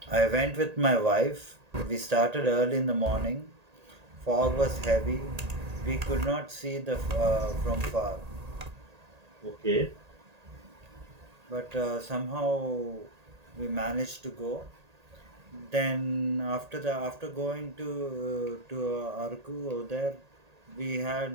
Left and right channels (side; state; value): left; late; 1.8 ms